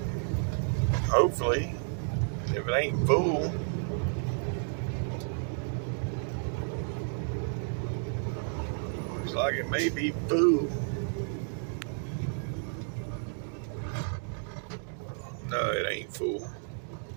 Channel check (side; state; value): left; silent; 55 dB below the other